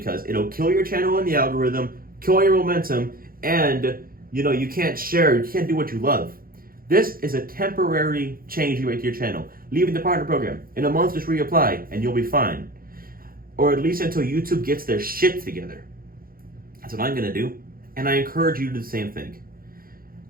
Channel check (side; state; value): left; late; 0.42 ms